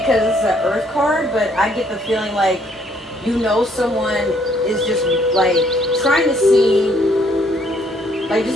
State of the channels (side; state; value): both; normal; correlation 0.66